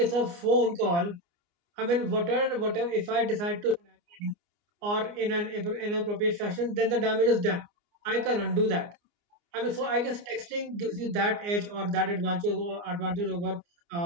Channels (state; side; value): late; left; 29 ms